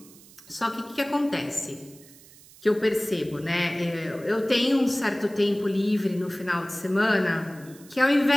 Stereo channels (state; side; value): noise; right; hiss, 23 dB below the sound